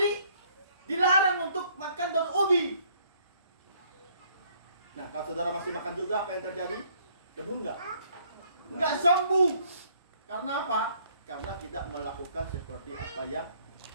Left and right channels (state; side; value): inverted; both; correlation -0.63